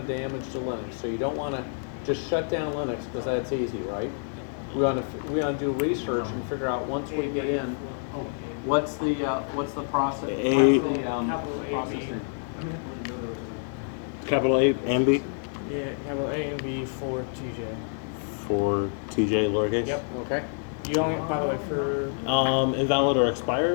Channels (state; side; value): silent; right; 60 dB below the other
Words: damage to Linux. So you don't want to just shut down Linux because that's easy, right? We want to do research and figure out once we get in, what's the process? What's the process name? Capital A and B Yeah, capital A and B for TJ. for TJ lowercase. Yep. Okay. You only, by the way, for Invalid or